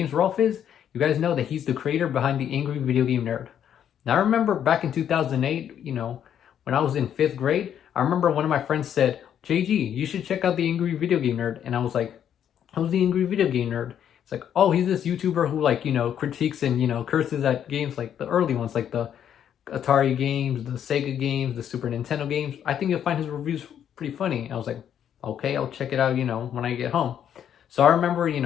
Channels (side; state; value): right; quieter; 9.4 dB